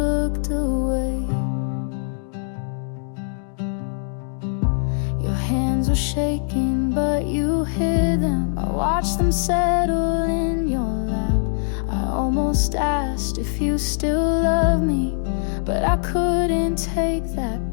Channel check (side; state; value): right; silent; digital silence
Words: away. Your hands were shaking, but you hid them. I watched them settle in your lap. I almost asked if you still love me, but I couldn't take that